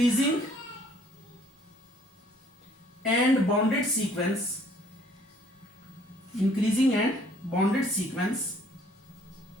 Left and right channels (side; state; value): both; normal; correlation 0.60